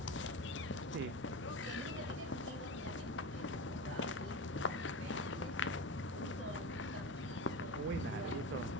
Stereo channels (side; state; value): both; normal; correlation 0.25